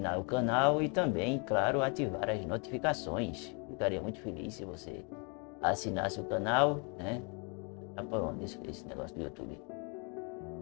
o canal e também, claro, ativar as notificações. Ficaria muito feliz se você assinasse o canal, né? Tá por onde esse negócio do YouTube?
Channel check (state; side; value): quieter; right; 34.8 dB